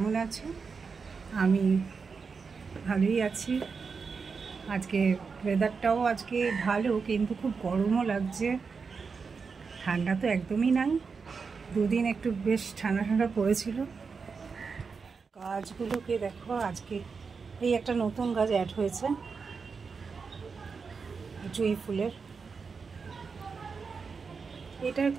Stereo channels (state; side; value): quieter; left; 5.2 dB